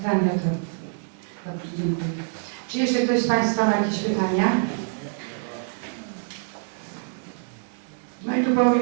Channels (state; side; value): silent; left; digital silence